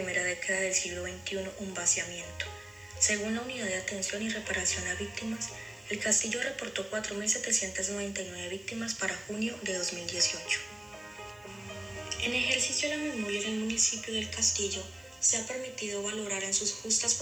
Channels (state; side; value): noise; left; hiss, 27 dB below the sound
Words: década del siglo XXI un vaciamiento. Según la Unidad de Atención y Reparación a Víctimas, el Castillo reportó 4.799 víctimas para junio de 2018. En ejercicio de la memoria en el municipio del Castillo, se ha permitido valorar en sus justas